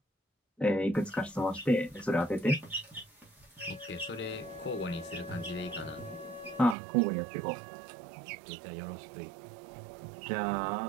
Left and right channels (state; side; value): drops out; left; at 6.8 s